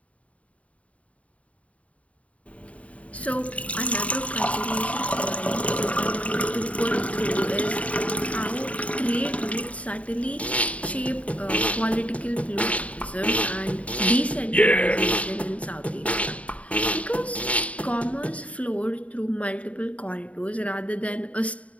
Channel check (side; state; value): right; late; 0.066 ms